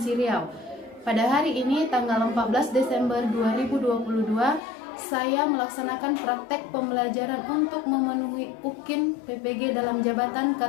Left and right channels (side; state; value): right; drops out; at 4.6 s